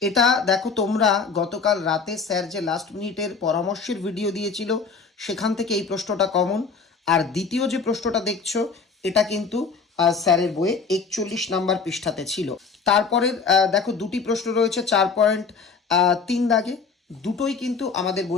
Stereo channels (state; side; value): quieter; right; 5.1 dB